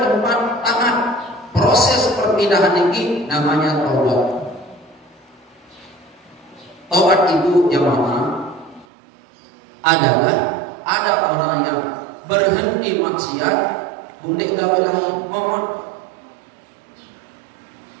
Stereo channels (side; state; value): left; drops out; at 8.8 s